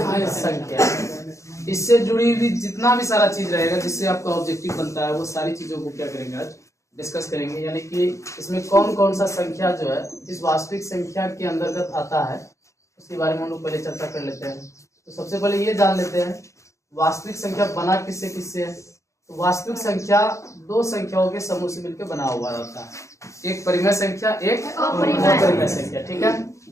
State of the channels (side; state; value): right; late; 0.15 ms